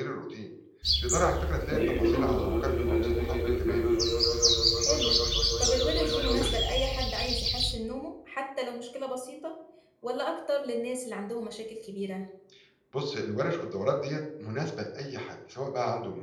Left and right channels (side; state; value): both; identical; correlation 1.00